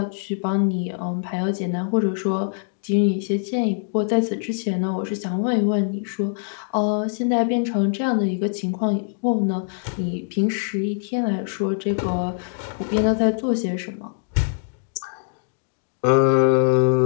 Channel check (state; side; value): silent; right; digital silence